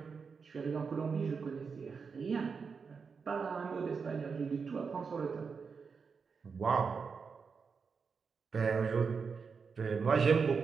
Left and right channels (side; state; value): left; quieter; 5.5 dB